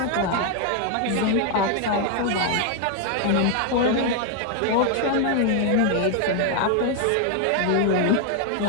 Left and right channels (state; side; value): different; both; correlation 0.01